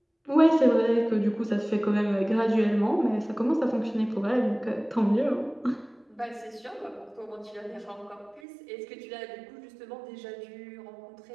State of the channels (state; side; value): drops out; left; at 8.4 s